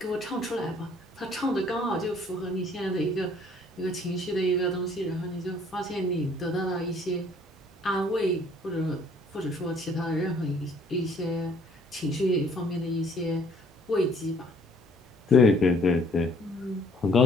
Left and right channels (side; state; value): both; normal; correlation 0.60